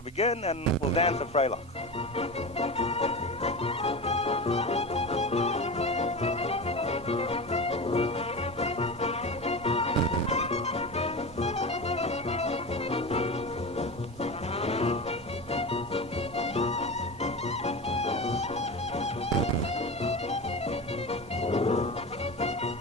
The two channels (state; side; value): normal; both; correlation 0.26